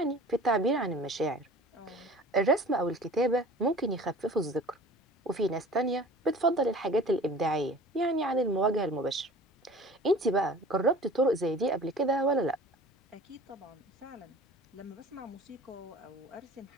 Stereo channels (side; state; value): both; normal; correlation 0.43